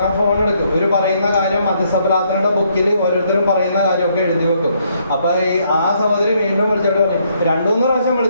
ഫോൺ എടുക്കും. ഒരു പറയുന്ന കാര്യം മധ്യസ്ഥപ്രാർത്ഥനയുടെ ബുക്കിൽ ഓരോരുത്തരും പറയുന്ന കാര്യമൊക്കെ എഴുതി വെക്കും. അപ്പോൾ ആ സഹോദരി വീണ്ടും വിളിച്ചിട്ട് 2-3 പ്രാവശ്യം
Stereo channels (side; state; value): both; inverted; correlation -0.71